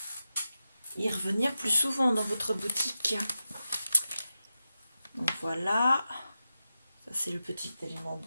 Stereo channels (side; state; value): both; inverted; correlation -0.91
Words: y revenir plus souvent dans votre boutique. Donc voilà, ça c'est le petit élément